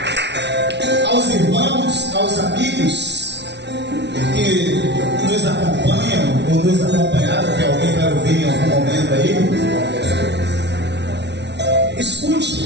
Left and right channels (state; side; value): late; left; 0.50 ms